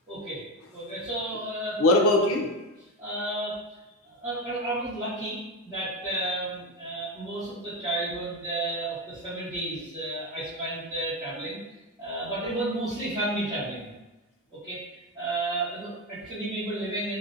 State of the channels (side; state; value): both; normal; correlation 0.16